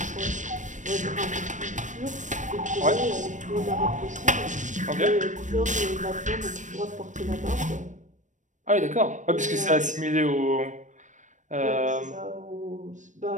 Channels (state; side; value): late; left; 0.36 ms